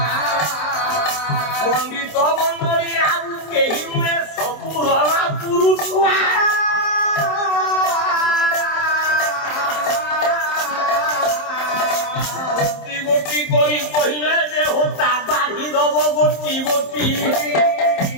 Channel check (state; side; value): late; right; 27 ms